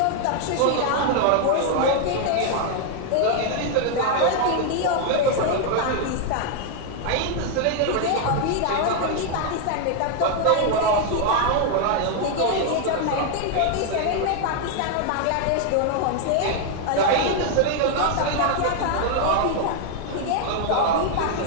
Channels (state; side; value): different; both; correlation 0.00